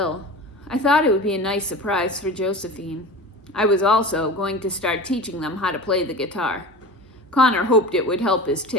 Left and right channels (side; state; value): both; normal; correlation 0.33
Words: I thought it would be a nice surprise for Josephine. I was also going to start teaching them how to play the guitar. Connor hoped it would help his